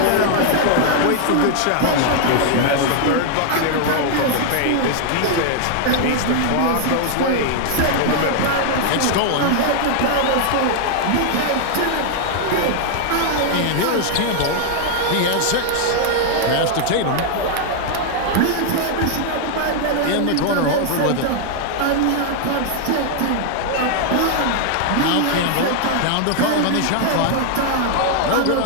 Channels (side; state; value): both; different; correlation 0.00